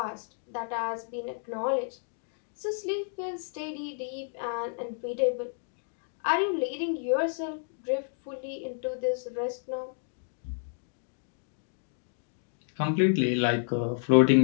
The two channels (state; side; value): silent; right; digital silence